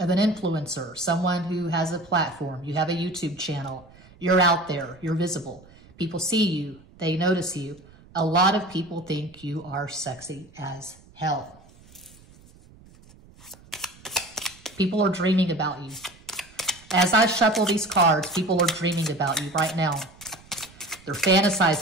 influencer, someone who has a platform. You have a YouTube channel. You're out there. You're visible. People see you. They notice you. A lot of people think you are sexy as hell. People are dreaming about you. As I shuffle these cards, people are dreaming about you right now. They're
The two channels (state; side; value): noise; right; rumble, 25 dB below the sound